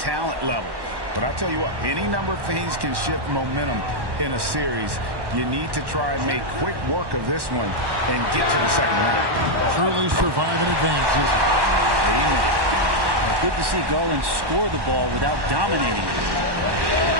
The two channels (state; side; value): late; left; 1.1 ms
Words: level. But I'll tell you what, any number of things can shift momentum in a series. You need to try and make quick work of this one and get to the second round. Truly survive and advance, isn't it? Amen. Well, good to see Garland score the ball without dominating it.